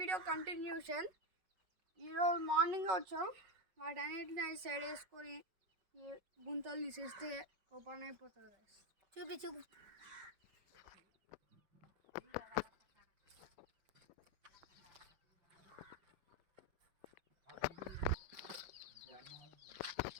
continuation. ఈరోజు మార్నింగ్ వచ్చాం. వాటన్నిటిని సైడ్ వేసుకొని గుంతలు తీసేస్తే ఓపెన్ అయిపోతుంది. గాయస్ చూపి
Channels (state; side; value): late; left; 5.4 ms